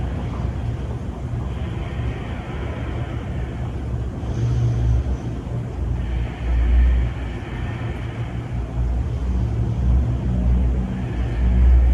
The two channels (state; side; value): identical; both; correlation 1.00